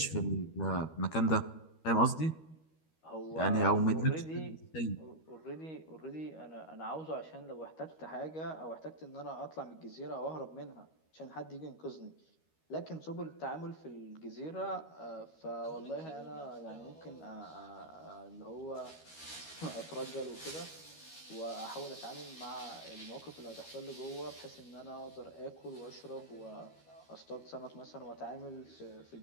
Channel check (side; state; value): right; late; 13 ms